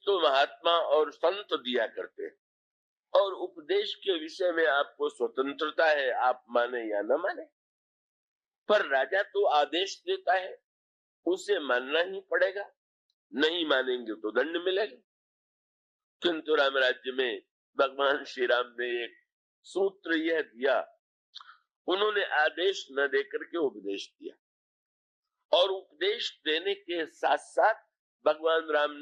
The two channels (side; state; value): both; identical; correlation 1.00